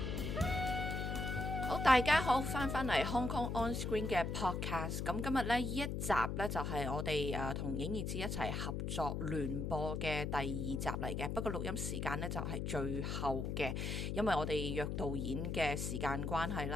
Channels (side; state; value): left; noise; hum, 2 dB below the sound